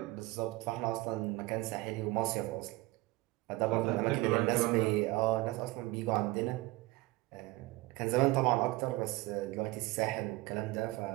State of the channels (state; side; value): quieter; left; 20.4 dB